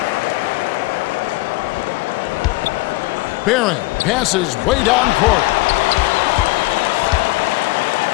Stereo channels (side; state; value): right; quieter; 21.4 dB